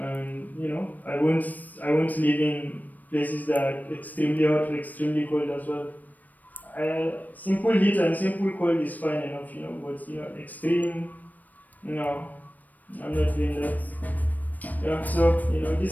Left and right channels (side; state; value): right; late; 0.082 ms